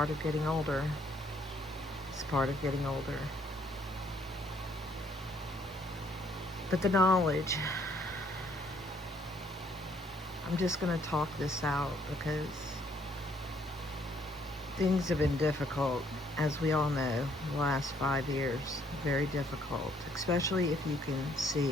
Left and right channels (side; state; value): both; normal; correlation 0.66